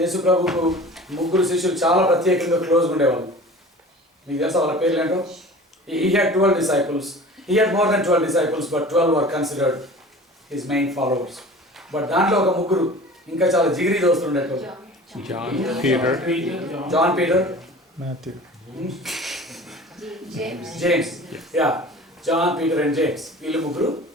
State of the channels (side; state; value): both; normal; correlation 0.41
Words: యేసు ప్రభుకు ముగ్గురు శిష్యులు చాలా ప్రత్యేకంగా క్లోజ్గా ఉండేవాళ్ళు. మీకు తెలుసా వాళ్ళ పేర్లు ఏంటో? He had 12 disciples. He had more than 12 disciples, but 12 were considered his main followers. But దాంట్లో ఒక ముగ్గురు ఇంకా చాలా జిగిరి దోస్తులు ఉండేటోళ్ళు. John, Peter, Matthew, James. Yeah, John, Peter and James. వీళ్ళు ముగ్గురు